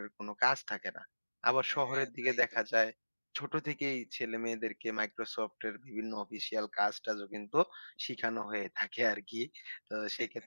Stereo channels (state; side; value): inverted; both; correlation -1.00